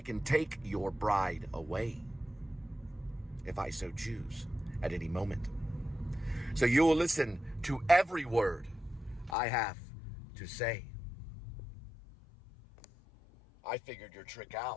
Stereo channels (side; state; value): right; drops out; at 9.3 s